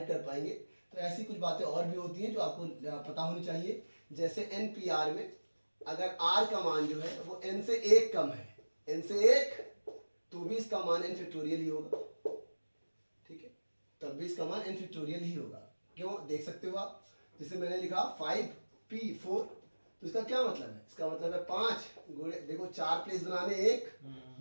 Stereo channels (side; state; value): both; inverted; correlation -1.00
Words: कर पाएंगे। तो ऐसी कुछ बातें और भी होती हैं जो आपको पता होनी चाहिए। जैसे NPR में अगर r का मान जो है वो n से 1 कम है, n से 1, तो भी इसका मान n फैक्टोरियल ही होगा, ठीक है, तब भी इसका मान n फैक्टोरियल ही होगा। क्यों, देख सकते हो आप, जैसे मैंने लिखा 5p4 तो इसका क्या मतलब है? इसका मतलब है 5 गुणे, देखो 4 प्लेस बनाने, 1